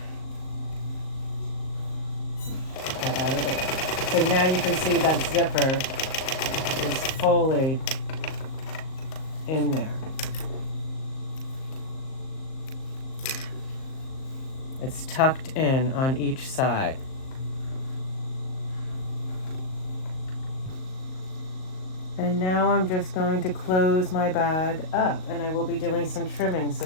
That out of the way. So now you can see that zipper is fully in there. It's tucked in on each side. And now I'm just going to close my bag up, and I will be doing some trimming.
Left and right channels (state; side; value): late; right; 38 ms